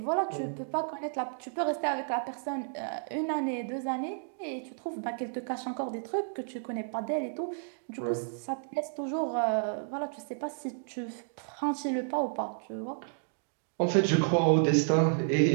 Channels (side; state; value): left; silent; digital silence